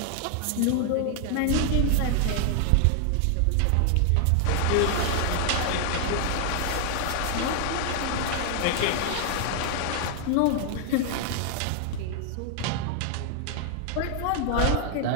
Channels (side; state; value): both; different; correlation 0.00